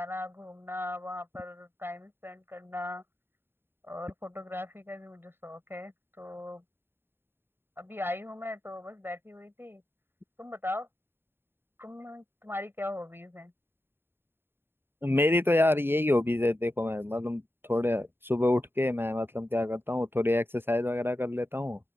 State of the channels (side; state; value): left; late; 0.11 ms